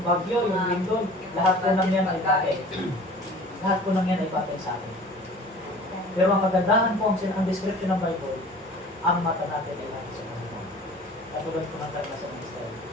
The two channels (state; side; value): normal; both; correlation 0.45